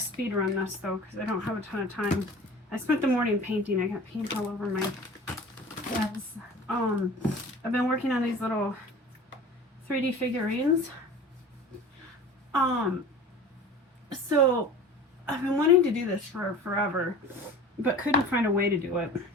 run this though because I don't have a ton of time. I spent the morning painting. I got paint all over my hands. I've been working on these little 3D figurines. So I've been wanting to do this for forever, but couldn't find a way to do it.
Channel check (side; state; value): both; normal; correlation 0.40